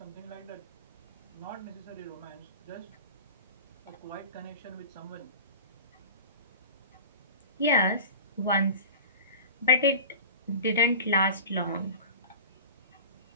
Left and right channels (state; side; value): inverted; both; correlation -0.36